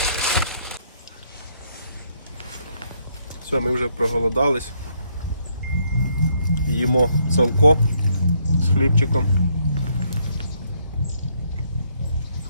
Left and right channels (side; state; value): both; inverted; correlation -0.71